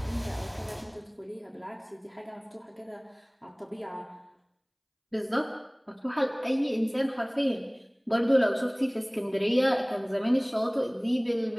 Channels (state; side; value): identical; both; correlation 1.00